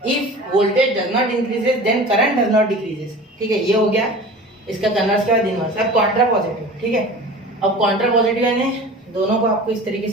if voltage does not increases then current does not decreases, ठीक है, ये हो गया इसका कन्वर्स के बाद इनवर्स। अब कॉन्ट्रा पॉजिटिव, ठीक है। अब कॉन्ट्रा पॉजिटिव यानी दोनों को आपको इस तरीके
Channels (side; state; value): both; normal; correlation 0.38